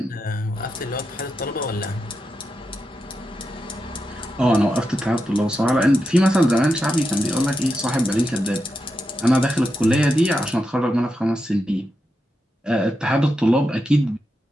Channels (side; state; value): both; normal; correlation 0.87